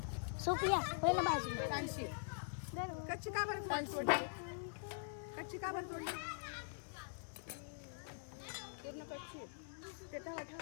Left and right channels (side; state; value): right; silent; digital silence